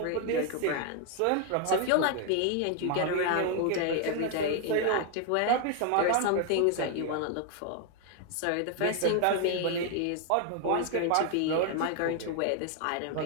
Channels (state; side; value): different; both; correlation 0.01